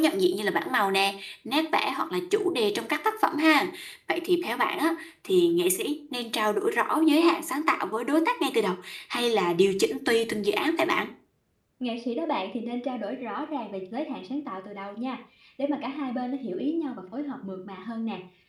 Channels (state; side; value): identical; both; correlation 1.00